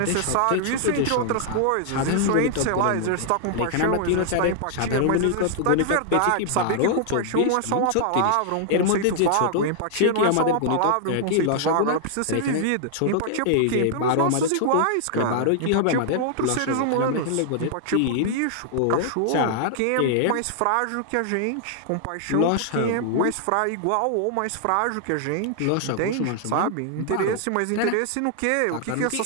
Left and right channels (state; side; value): different; both; correlation -0.01